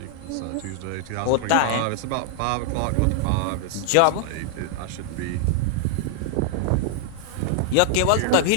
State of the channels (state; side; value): different; both; correlation 0.00